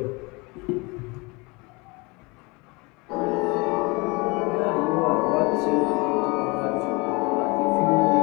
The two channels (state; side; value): quieter; right; 26.8 dB